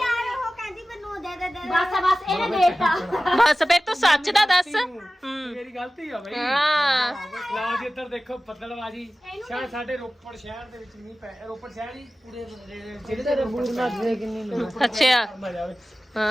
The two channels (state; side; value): normal; both; correlation 0.96